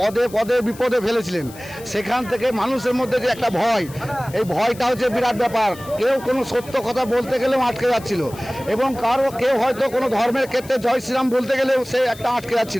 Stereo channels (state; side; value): noise; left; hiss, 19 dB below the sound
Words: পদে বিপদে ফেলেছিলেন, সেখান থেকে মানুষের মধ্যে যে একটা ভয়, এই ভয়টা হচ্ছে বিরাট ব্যাপার। কেউ কোনো সত্য কথা বলতে গেলেও আটকে যাচ্ছিল এবং কেউ হয়তো কোনো ধর্মের ক্ষেত্রে জয় শ্রীরাম বলতে গেলেও সে একটা আটকে